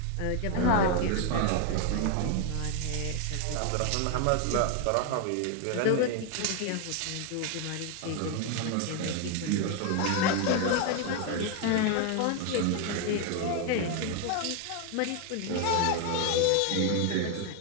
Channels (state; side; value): different; both; correlation 0.01